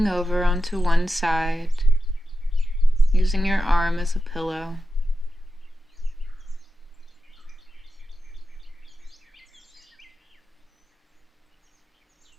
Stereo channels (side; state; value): both; normal; correlation 0.91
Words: over onto one side, using your arm as a pillow.